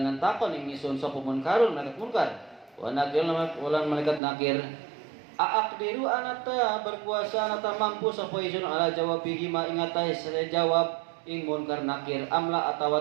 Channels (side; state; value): left; drops out; at 4.2 s